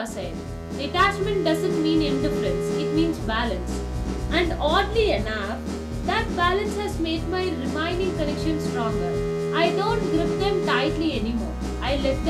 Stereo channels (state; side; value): identical; both; correlation 1.00